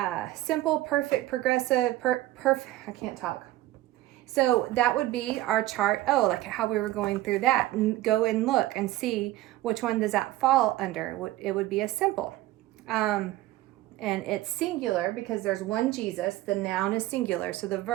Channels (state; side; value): quieter; left; 16.3 dB